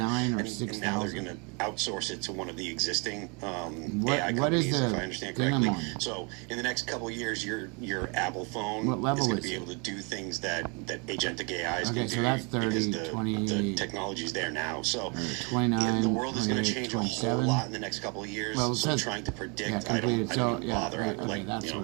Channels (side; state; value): left; quieter; 33.3 dB